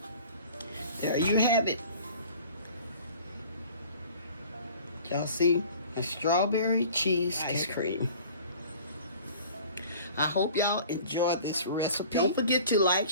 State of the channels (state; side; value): inverted; both; correlation -0.47